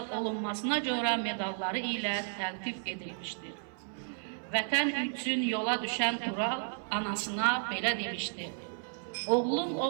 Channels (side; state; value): left; silent; 56 dB below the other